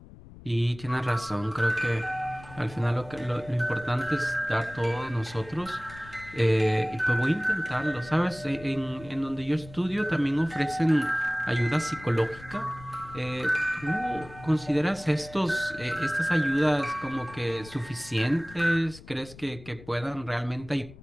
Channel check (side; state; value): left; noise; rumble, 19 dB below the sound